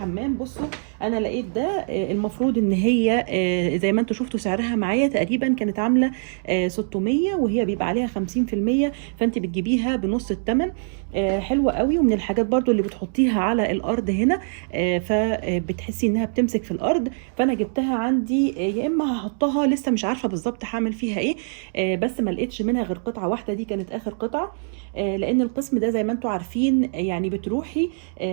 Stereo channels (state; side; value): silent; left; digital silence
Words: بصوا انا لقيت ده المفروض ان هي زي ما انتوا شفتوا سعرها معايا تقريبا كانت عامله 600، وهي بيبقى عليها 50%، فانت بتجيبيها بنص الثمن. حلوه قوي، ومن الحاجات برضو اللي بتحطيها على الارض هنا فبتحسي انها بتمسك في الارض. فانا جبتها عندي يا اما هحطها، لسه مش عارفه بالظبط هعمل فيها ايه. بس ما لقيتش منها غير قطعه واحده، دي كانت اخر قطعه. لان القسم ده زي ما انتوا عارفين يعني بتروحي